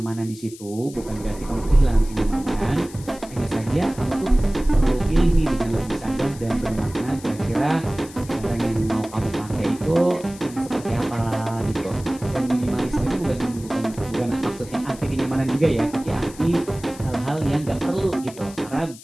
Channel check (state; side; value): noise; left; hiss, 18 dB below the sound